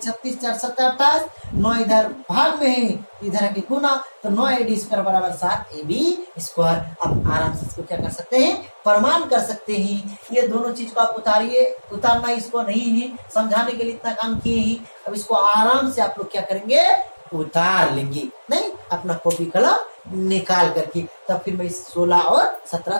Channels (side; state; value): both; inverted; correlation -1.00